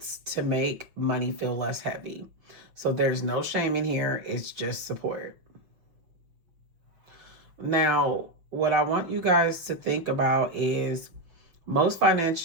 to make money feel less heavy. So, there's no shame in here, it's just support. Now, what I want you guys to think about is most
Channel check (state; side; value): late; left; 6.1 ms